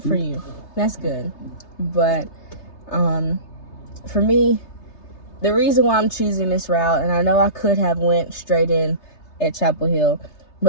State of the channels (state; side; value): late; right; 3.3 ms